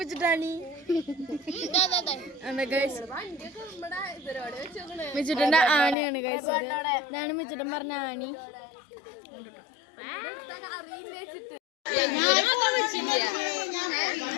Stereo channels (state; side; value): drops out; right; at 6.0 s